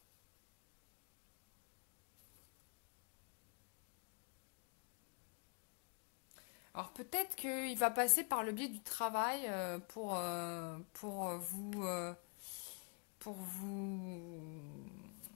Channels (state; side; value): quieter; right; 37.3 dB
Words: Alors peut-être qu'il va passer par le biais du travail pour vous